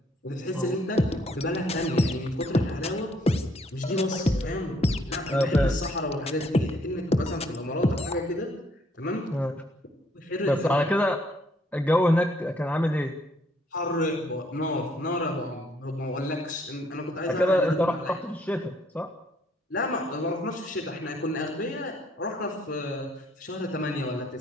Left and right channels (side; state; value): both; normal; correlation 0.67